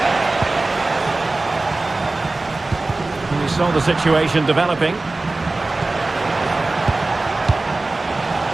We saw the situation developing.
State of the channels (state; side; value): quieter; left; 3.2 dB